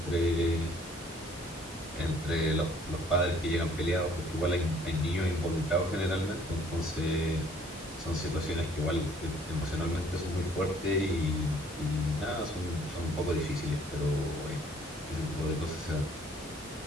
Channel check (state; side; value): normal; both; correlation 0.59